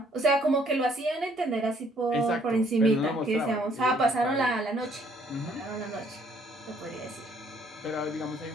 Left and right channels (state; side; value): normal; both; correlation 0.64